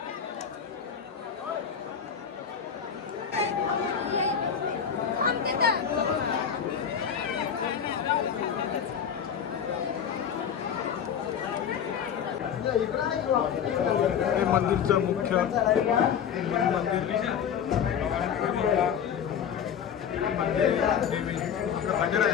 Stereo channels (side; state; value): right; quieter; 8.0 dB